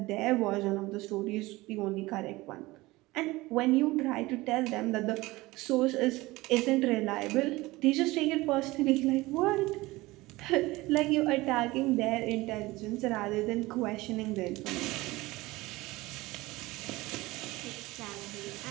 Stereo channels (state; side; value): quieter; left; 20.3 dB